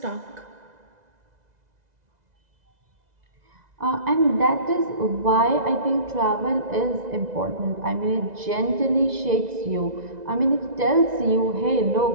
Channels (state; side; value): late; left; 2.0 ms